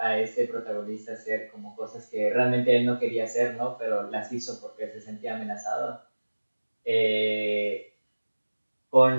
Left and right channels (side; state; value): both; inverted; correlation -1.00